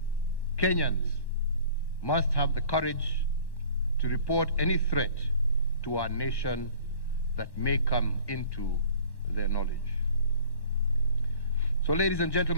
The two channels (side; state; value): right; late; 1.1 ms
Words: Kenyans must have the courage to report any threat to our nation that may come into their knowledge. So, ladies and